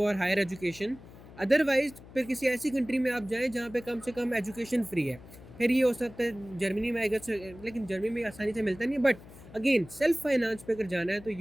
higher education. Otherwise फिर किसी ऐसी कंट्री में आप जाएं जहाँ पे कम से कम एजुकेशन फ्री है। फिर ये हो सकता है जर्मनी में आएगा, लेकिन जर्मनी में आसानी से मिलता नहीं है। बट अगेन सेल्फ फाइनेंस पे अगर जाना है तो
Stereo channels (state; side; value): noise; left; hum, 19 dB below the sound